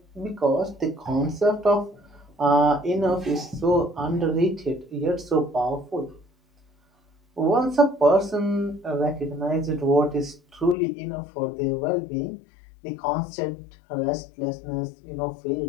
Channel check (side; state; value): right; drops out; at 10.8 s